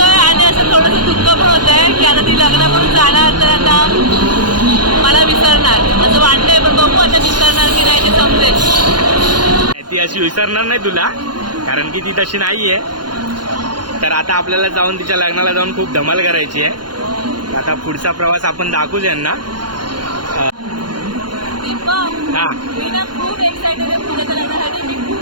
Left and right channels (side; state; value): left; late; 0.71 ms